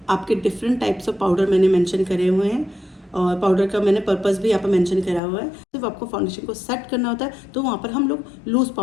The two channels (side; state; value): right; drops out; at 5.2 s